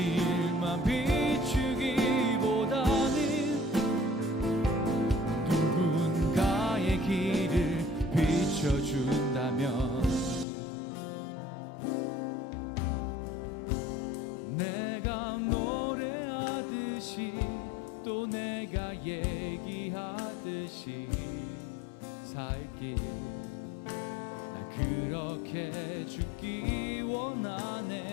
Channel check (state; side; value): drops out; right; at 10.5 s